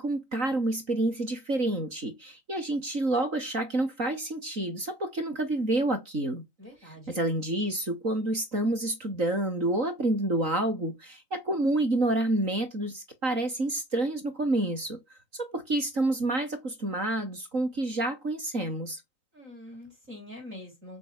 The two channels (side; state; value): left; late; 3.9 ms